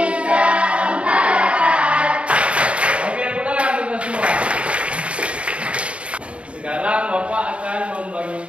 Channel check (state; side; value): late; left; 0.061 ms